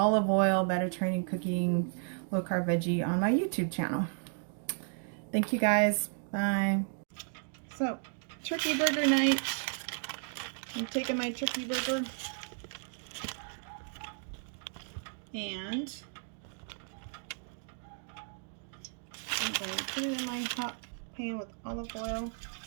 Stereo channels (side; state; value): left; silent; 55 dB below the other